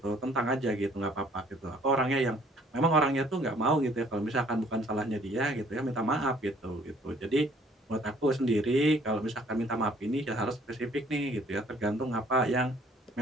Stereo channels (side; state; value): both; normal; correlation 0.59